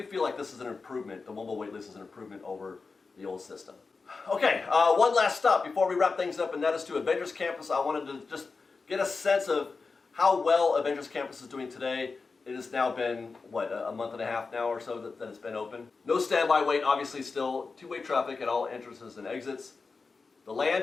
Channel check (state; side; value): quieter; right; 4.4 dB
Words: feel like this is an improvement. The mobile waitlist is an improvement over the old system. Okay, one last stop before we wrap things up, and that is to Avengers Campus. I wanted to just get a sense of how well Avengers Campus is doing today. It has now been, a month and a half now or so that it's been open. No standby wait, obviously still two-way traffic at all entrances and exits. The